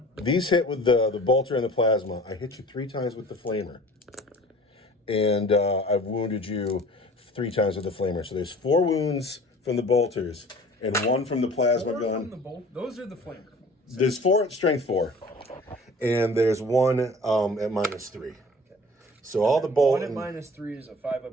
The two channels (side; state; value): both; normal; correlation 0.45